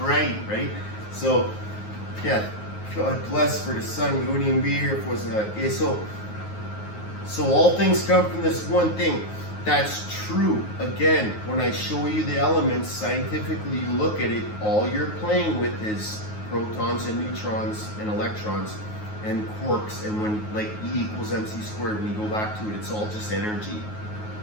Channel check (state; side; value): late; right; 9.5 ms